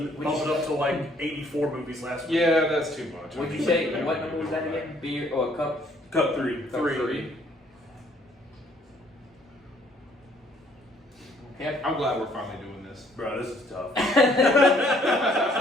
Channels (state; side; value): normal; both; correlation 0.63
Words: bump it up to like 84 movies last week. Yeah, that's too much. What'd you say? What number was that again? Beer or cup? Cup 3. Cup 3. Okay. I'm glad we're finally doing this. Bro, this is tough.